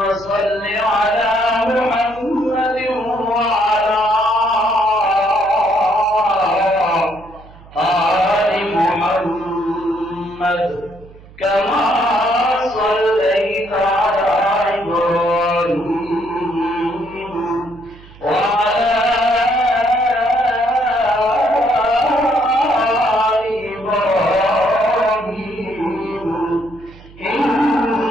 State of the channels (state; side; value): noise; right; hum, 22 dB below the sound